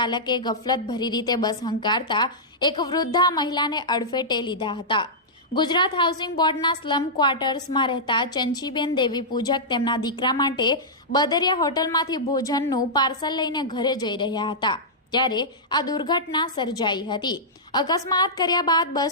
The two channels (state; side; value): normal; both; correlation -0.12